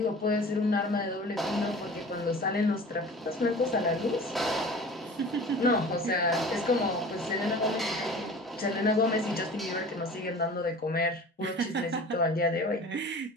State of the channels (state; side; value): normal; both; correlation 0.41